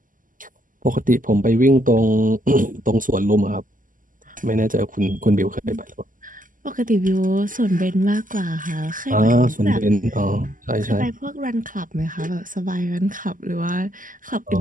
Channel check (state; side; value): late; left; 0.39 ms